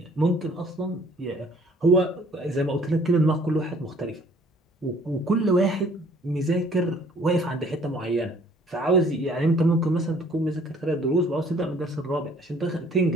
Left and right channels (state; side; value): normal; both; correlation 0.57